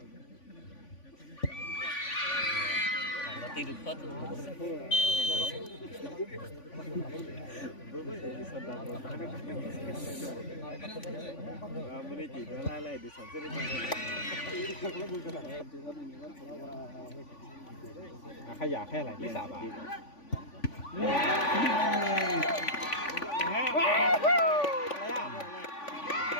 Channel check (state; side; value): late; right; 3.5 ms